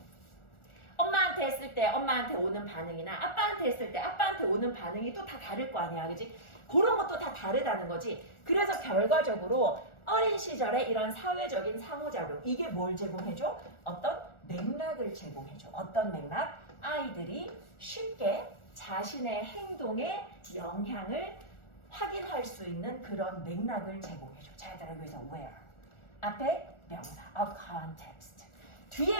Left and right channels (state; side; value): late; right; 1.4 ms